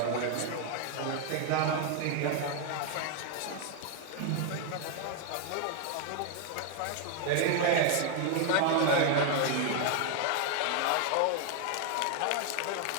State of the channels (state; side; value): different; both; correlation 0.01